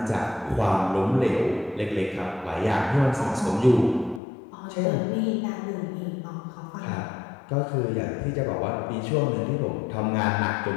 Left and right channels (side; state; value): right; drops out; at 4.2 s